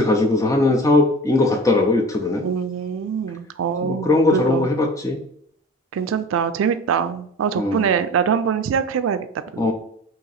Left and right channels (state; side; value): normal; both; correlation 0.37